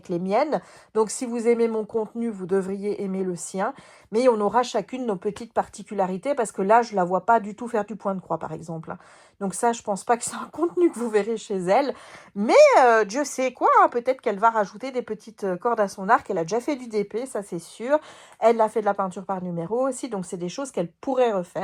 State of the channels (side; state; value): both; identical; correlation 1.00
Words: les miennes. Donc si vous aimez mon contenu, vous devriez aimer le sien. Mais on aura chacune nos petites particularités, parce que là, je la vois pas du tout faire du point de croix, par exemple. Donc ça, je pense pas que c'est un contenu que vous verrez chez elle. Mais Dieu sait quoi, hein, peut-être qu'elle va rajouter des petites cordes à son arc. Elle a déjà fait du DP, ça c'est sûr. Elle a fait de la peinture par numéro aussi, donc c'est des choses qu'elle pourrait